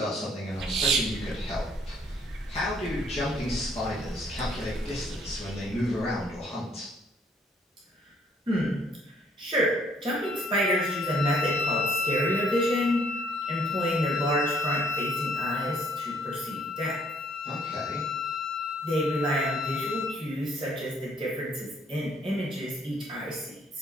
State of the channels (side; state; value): both; normal; correlation 0.63